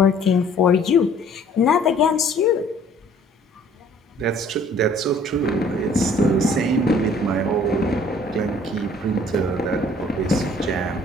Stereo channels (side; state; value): both; normal; correlation 0.56